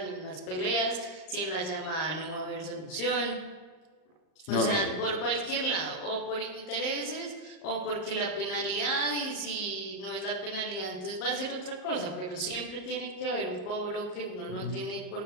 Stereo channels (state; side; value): late; right; 38 ms